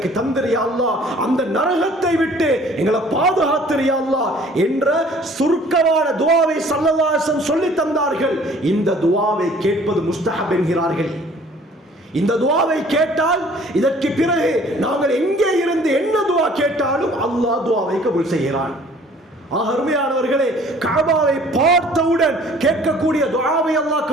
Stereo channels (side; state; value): both; normal; correlation 0.53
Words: தந்திரியா அல்லாஹ், அந்த நரகத்தை விட்டு எங்களை பாதுகாத்திரியா அல்லாஹ் என்ற சுருக்கமான துஆவை ஸல்லல்லாஹு அலைஹி வஸல்லம் சொல்லி தந்தார்கள். இந்த துஆவை கேட்பது முஸ்தஹப் என்கிறார்கள். இந்த துஆவை கேட்டால் இதற்கு பிறகு நாங்கள் எங்கே இருந்து என்ன துஆ கேட்டாலும் அல்லாஹ் துஆவை கபூல் செய்கிறான். அருமையானவர்களே, கஅபாவை பார்த்தவுடன் கேட்கக்கூடிய துஆவை அல்லாஹ்